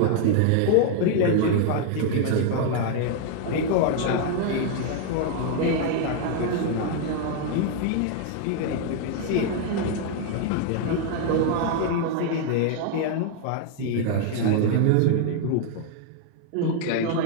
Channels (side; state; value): both; different; correlation 0.00